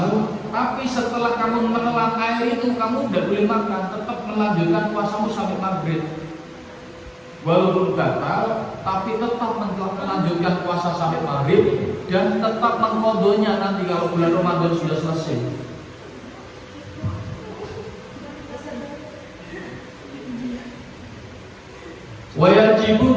tapi setelah kamu menelan air itu kamu tidak boleh makan, tetap melanjutkan puasamu sampai maghrib. Walaupun batal, tapi tetap melanjutkan puasa sampai maghrib dan tetap mengqadhanya nanti kalau bulan Ramadan sudah selesai. Wajibu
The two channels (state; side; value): identical; both; correlation 1.00